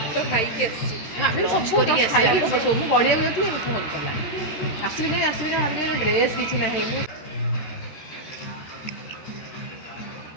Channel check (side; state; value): right; late; 13 ms